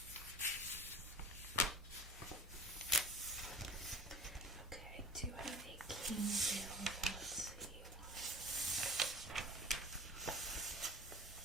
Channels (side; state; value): both; normal; correlation 0.40